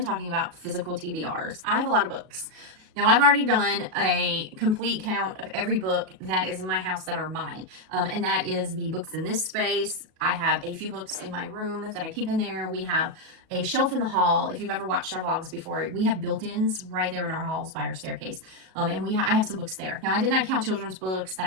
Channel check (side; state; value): left; late; 37 ms